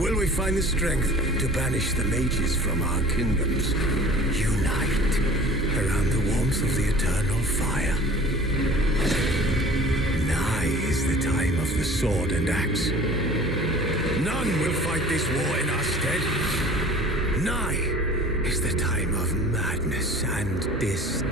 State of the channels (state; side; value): normal; both; correlation 0.46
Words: we find the strength to banish the mages from our kingdoms? Unite around the warmth of the eternal fire. Nigh is the time of the sword and axe. None will fight this war in our stead. Nigh is the time of madness and